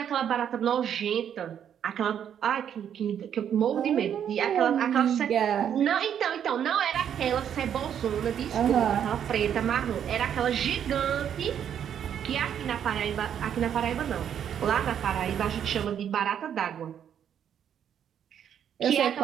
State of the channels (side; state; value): left; quieter; 9.0 dB